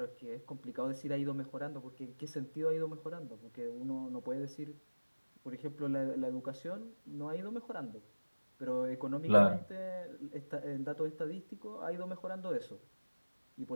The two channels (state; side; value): inverted; both; correlation -1.00